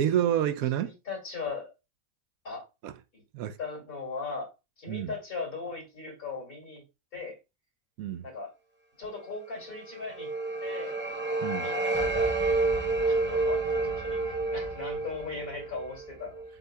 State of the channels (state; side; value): quieter; left; 3.1 dB